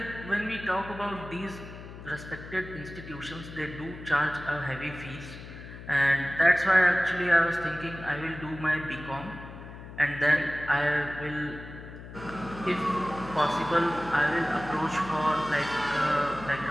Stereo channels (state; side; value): noise; left; hum, 13 dB below the sound